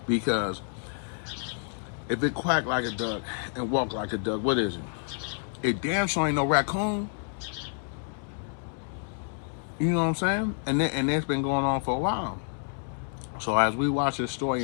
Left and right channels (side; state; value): right; silent; 59 dB below the other